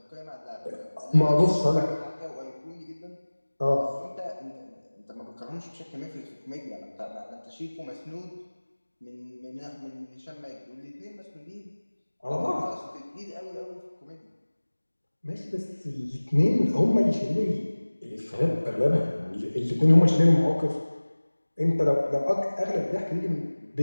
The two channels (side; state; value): both; inverted; correlation -1.00